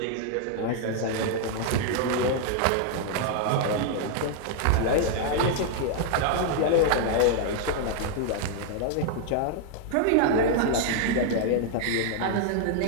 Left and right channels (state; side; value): different; both; correlation 0.00